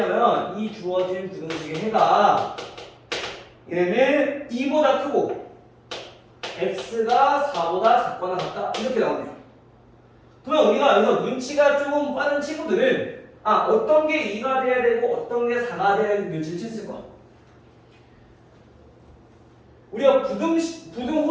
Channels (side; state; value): both; identical; correlation 1.00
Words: 이 주어진 부등식의 해가 얘는 2보다 크고 x가 4보다 작거나 같다 이렇게 나오네요. 그러면 우리가 여기서 눈치가 조금 빠른 친구들은 어떤 게 2가 돼야 되고 어떤 게 4가 돼야 되는 눈치를 챘을 거야. 우리가